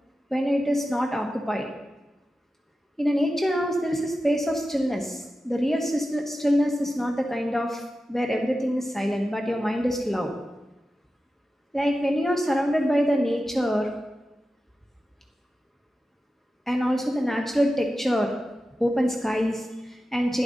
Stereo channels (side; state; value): both; normal; correlation 0.93